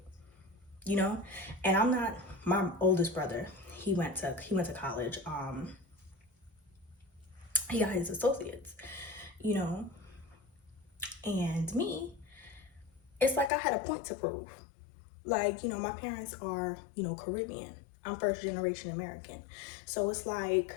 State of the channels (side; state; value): right; drops out; at 13.5 s